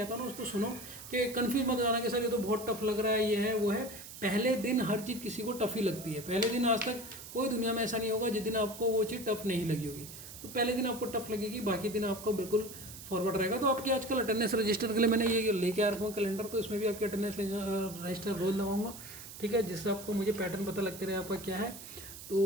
हूँ ना उसको सुनो, कि कन्फ्यूज मत हो जाना कि सर ये तो बहुत टफ लग रहा है, ये है वो है। पहले दिन हर चीज़ किसी को टफ ही लगती है, पहले दिन आज तक कोई दुनिया में ऐसा नहीं होगा जिस दिन आपको वो चीज़ टफ नहीं लगी होगी। तो पहले दिन आपको टफ लगेगी, बाकी दिन आपको बिल्कुल फॉरवर्ड रहेगा। तो आपकी आजकल अटेंडेंस रजिस्टर के लिए मैंने ये लेके आ रखा हूँ कैलेंडर, तो इसमें भी आपकी अटेंडेंस रजिस्टर रोज लगाऊंगा, ठीक है, जिससे आपको मुझे पैटर्न पता लगते रहे आपका क्या है।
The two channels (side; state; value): right; noise; hiss, 13 dB below the sound